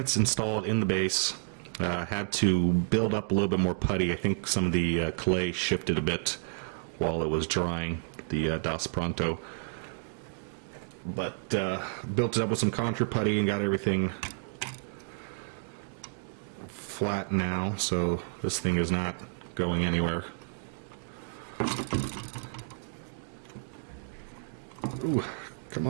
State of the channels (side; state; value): left; silent; digital silence